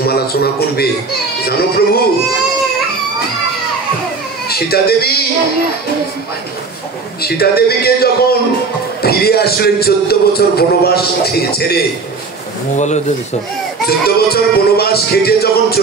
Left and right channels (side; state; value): left; quieter; 4.3 dB